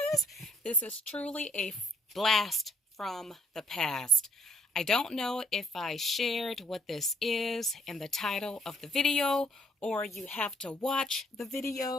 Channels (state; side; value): normal; both; correlation 0.64